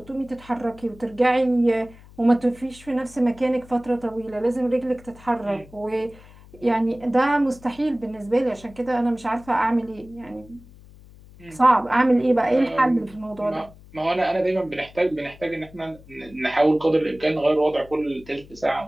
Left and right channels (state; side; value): noise; left; hum, 22 dB below the sound